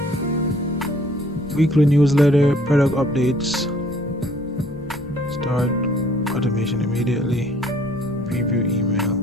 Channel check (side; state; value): left; noise; rumble, 19 dB below the sound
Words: weekly newsletter, product updates. Start automation immediately. Preview email.